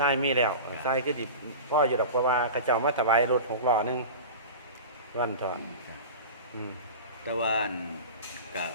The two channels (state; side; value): inverted; both; correlation -0.31